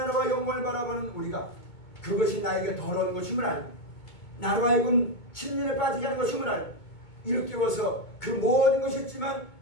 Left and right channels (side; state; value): right; late; 2.2 ms